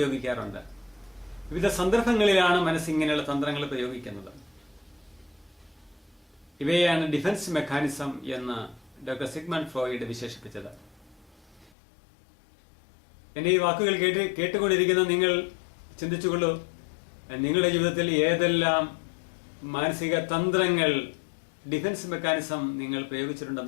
വിവിധ സന്ദർഭങ്ങളിലാണ് മനസ്സ് ഇങ്ങനെയുള്ള തന്ത്രങ്ങൾ പ്രയോഗിക്കുന്നത്. ഇവയാണ് ഡിഫൻസ് മെക്കാനിസം എന്ന് ഡോക്ടർ സിഗ്മണ്ട് ഫ്രോയിഡ് വിശേഷിപ്പിച്ചത്. എന്റെ ഈ വാക്കുകൾ കേട്ടുകൊണ്ടിരിക്കുന്ന നിങ്ങൾ ചിന്തിച്ചുകൊള്ളൂ, നിങ്ങളുടെ ജീവിതത്തിൽ ഏതെല്ലാം മാനസിക തന്ത്രങ്ങൾ, ഡിഫൻസ് മെക്കാനിസം നിങ്ങൾ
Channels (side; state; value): right; drops out; at 11.7 s